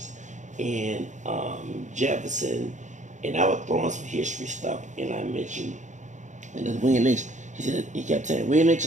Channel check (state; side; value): late; left; 0.35 ms